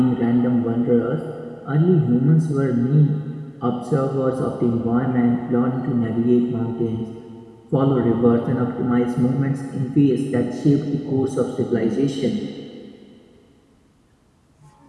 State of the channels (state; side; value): identical; both; correlation 1.00